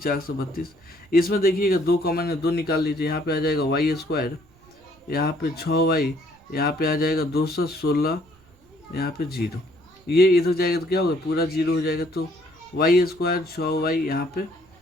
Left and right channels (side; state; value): right; noise; rumble, 30 dB below the sound